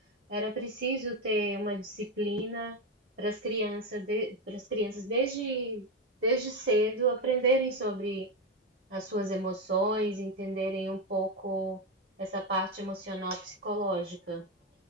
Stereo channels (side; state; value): both; normal; correlation 0.11